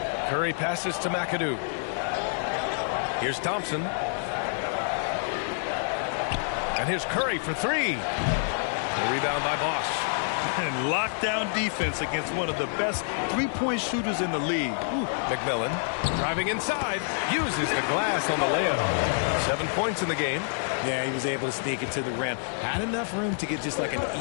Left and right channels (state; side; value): silent; right; digital silence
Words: Curry passes to McAdoo. Here's Thompson. And here's Curry for 3. A rebound by Bosch. And lockdown defense against one of the best three-point shooters in the league. Ooh. McMillan driving inside, uses the glass on the layup. 7 points in the game. Yeah, he was able to sneak it to the rim. Had enough room to get just like an